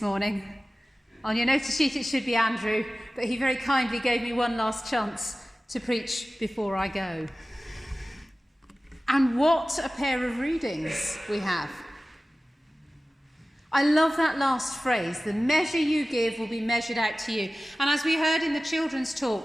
morning. On your notice sheet it should be Andrew, but he very kindly gave me one last chance to preach before I go. And what a pair of readings we have. I love that last phrase, the measure you give will be measured out to you. And as we heard in the children's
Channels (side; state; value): both; normal; correlation 0.96